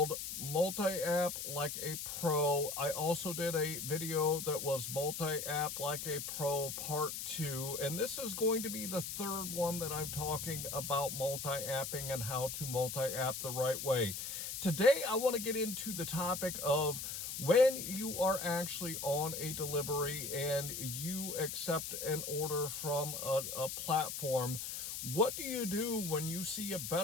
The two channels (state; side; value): noise; left; hiss, 5 dB below the sound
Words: Multi-App Like a Pro. I also did a video that was Multi-App Like a Pro Part 2, and this is going to be the third one that I'm talking about multi-apping and how to multi-app the right way. Today I want to get into the topic of when you are actually on a delivery and you accept an order from a platform. What do you do when you see a